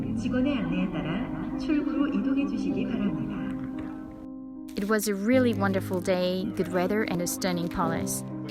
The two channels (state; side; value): identical; both; correlation 1.00